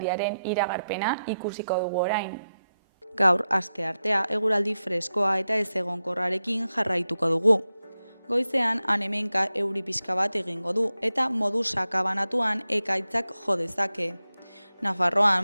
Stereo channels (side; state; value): both; inverted; correlation -0.90